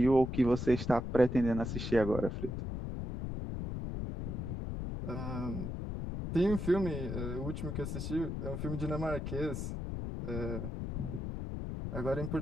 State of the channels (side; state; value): left; noise; rumble, 4 dB below the sound